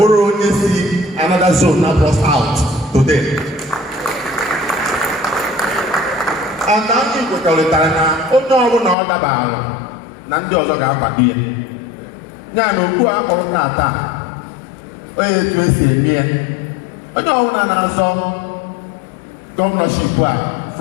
onye si another zone na Abga South today. And anyị kwekọrịtara na onye ọbụla ọ dabara na ndị ọzọ ga-akwado ya. Ya na okwu akpọrọ na-ata onye etu esi eme ya. Onye ọbụla na-azọ gọvanọship a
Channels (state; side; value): drops out; right; at 9.0 s